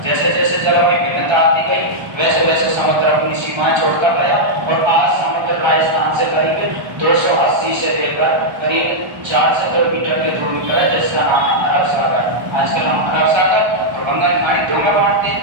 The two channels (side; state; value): left; late; 1.3 ms